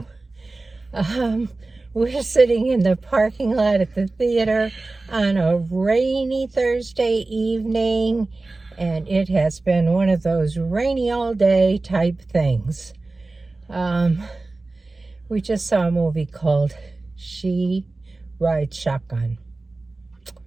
We're sitting in the parking lot at the theater on a rainy Thursday evening, and it has been one of those rainy all day type things. We just saw a movie called She Rides Shotgun.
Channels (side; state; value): left; quieter; 3.3 dB